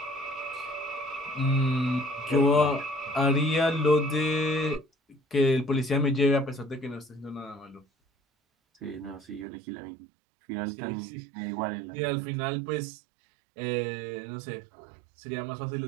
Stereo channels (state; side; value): drops out; left; at 9.5 s